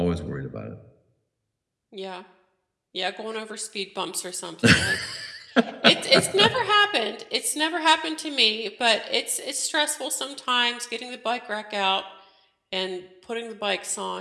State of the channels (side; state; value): both; identical; correlation 1.00